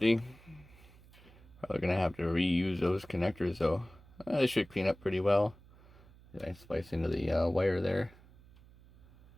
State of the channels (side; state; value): right; noise; hum, 24 dB below the sound